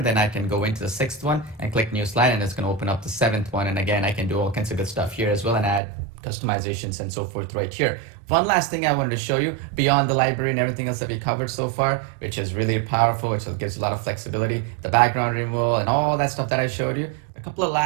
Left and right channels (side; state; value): left; drops out; at 5.8 s